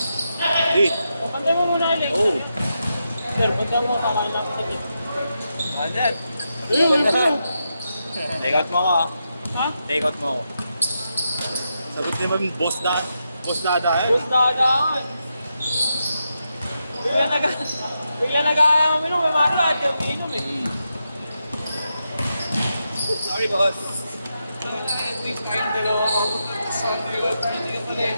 Di. Pantay mo muna, Alex. Oo. Sir, pantay mo, tama lang. Sige. Andyan. Ayun. Take out mo ako, ah. Ha? Take out mo ako. Sagot naman, boss dada. Boss dada, eh. Bus dagaan. Bigla nag-aminom, may maro at yung inom eh. Sorry, boss.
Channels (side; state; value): both; inverted; correlation -0.86